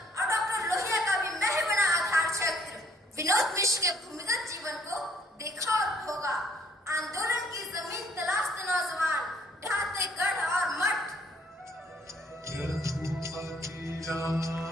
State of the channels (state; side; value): normal; both; correlation 0.64